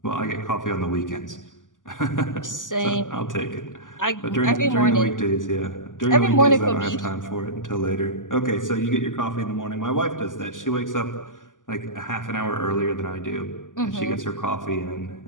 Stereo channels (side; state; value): right; late; 0.88 ms